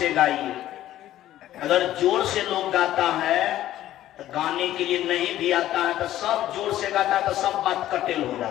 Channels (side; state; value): right; quieter; 13.4 dB